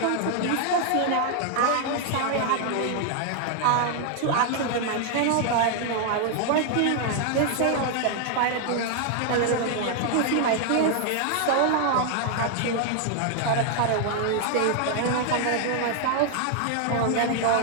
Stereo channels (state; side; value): different; both; correlation 0.00